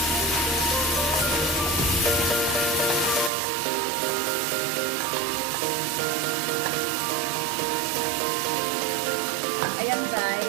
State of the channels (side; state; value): left; drops out; at 3.3 s